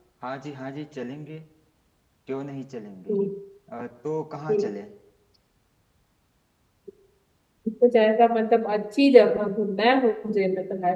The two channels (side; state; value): both; identical; correlation 1.00